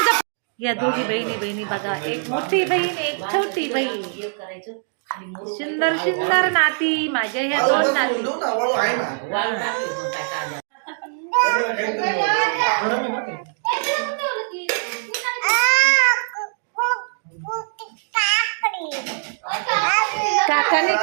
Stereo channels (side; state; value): left; silent; 64 dB below the other